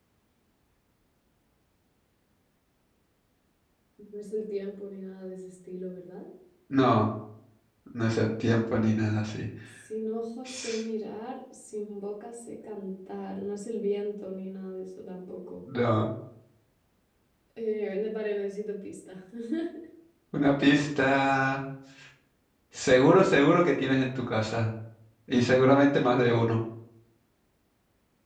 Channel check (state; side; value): identical; both; correlation 1.00